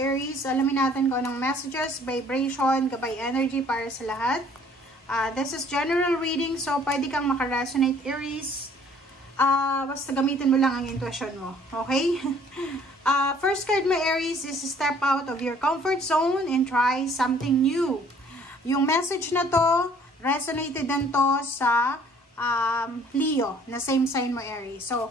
alamin natin kung anong messages, vibration, gabay energy para sa lahat. This is general reading, so pwede kang makaresonate Aries. Basta gamitin mo lang ang intuition mo. Okay? First card mo Aries is step out of your comfort zone and try something new. Yung message na to, resonated din to sa Leo, na same sign mo Aries. So,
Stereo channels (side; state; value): both; normal; correlation 0.57